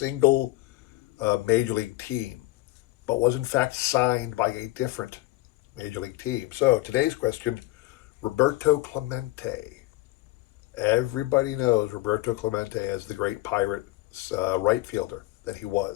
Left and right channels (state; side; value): quieter; right; 18.6 dB